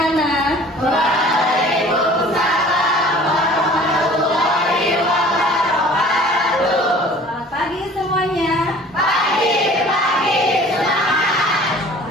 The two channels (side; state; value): both; normal; correlation 0.48